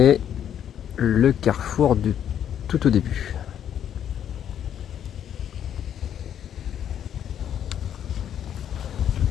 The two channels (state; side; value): quieter; right; 9.6 dB